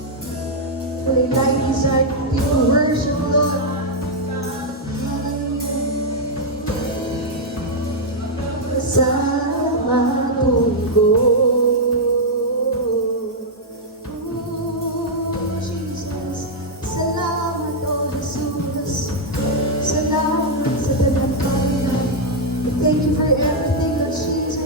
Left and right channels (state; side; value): normal; both; correlation -0.02